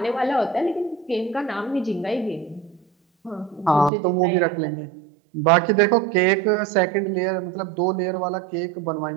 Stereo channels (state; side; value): drops out; left; at 3.9 s